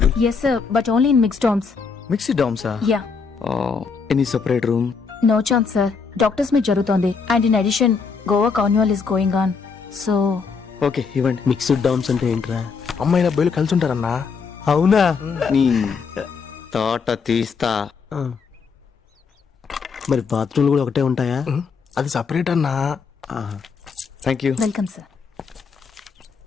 Yes sir, but only in mixed dorms. Mixed డామ్సా? Yeah. Any separate room? No chance sir. Doctors meet జరుగుతోంది. And in addition, Goa carnival is going on. So. Okay ఇవ్వండి. Mixed DOMS అంటే ఏంట్రా? అమ్మాయిల అబ్బాయిలు కలిసి ఉంటారన్నా. అవునా? నీ తోట తీస్తా. మరి బాత్రూమ్లు కూడా ఒకటే ఉంటాయా? అది సపరేట్ అన్నా. Thank you. Welcome sir.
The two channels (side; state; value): right; quieter; 5.3 dB